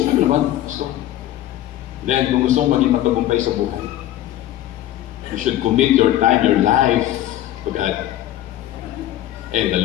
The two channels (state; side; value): quieter; right; 13.2 dB